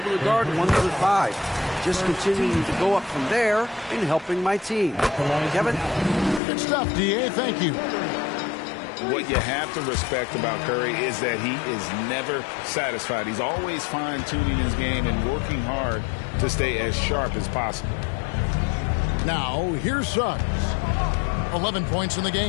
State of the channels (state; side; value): drops out; right; at 6.4 s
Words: to guard 1 through 5. Just continuing to go up from there and helping my team. Kevin? Good stuff, D.A. Thank you. What you have to respect about Curry is that he is never satisfied. He's always fine-tuning his game and working hard to stay as sharp as possible. Now, here's Suggs. 11 points in the